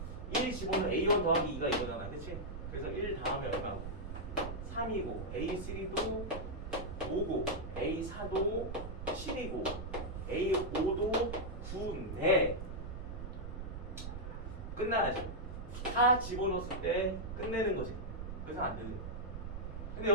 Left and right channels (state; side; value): noise; right; rumble, 7 dB below the sound